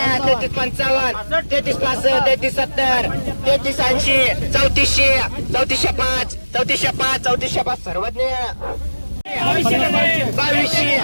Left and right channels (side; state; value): both; inverted; correlation -1.00